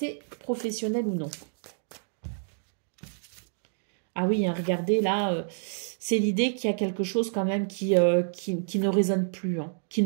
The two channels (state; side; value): silent; left; 59 dB below the other